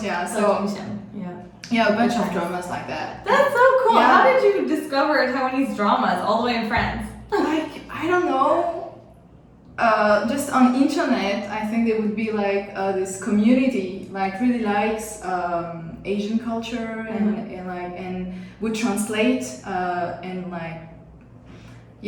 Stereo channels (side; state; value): both; identical; correlation 1.00